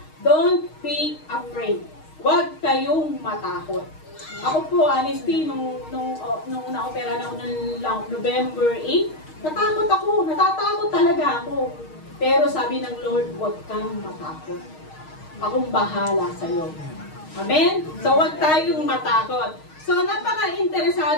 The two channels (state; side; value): late; right; 6.4 ms